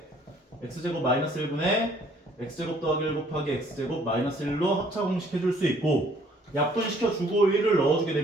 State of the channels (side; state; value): both; normal; correlation 0.60